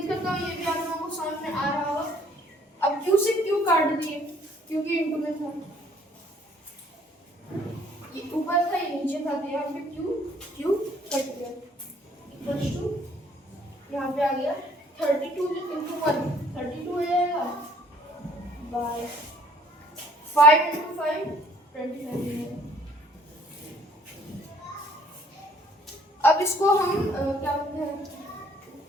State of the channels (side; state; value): both; normal; correlation 0.59